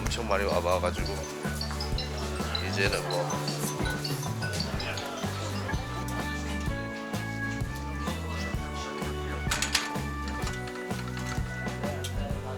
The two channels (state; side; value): identical; both; correlation 1.00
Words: 많이 와봐가지고 이제는 뭐